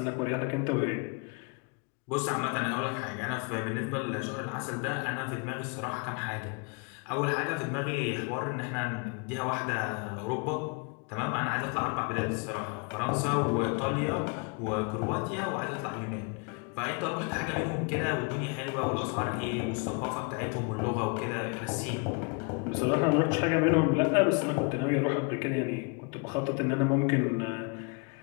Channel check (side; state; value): right; quieter; 33.8 dB